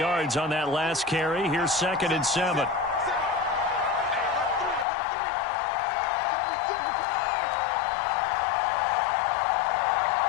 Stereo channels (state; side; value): drops out; right; at 4.9 s